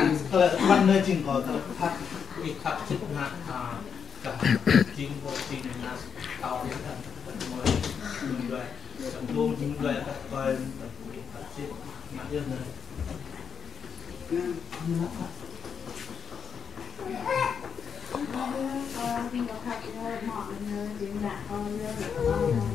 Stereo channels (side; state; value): right; quieter; 7.0 dB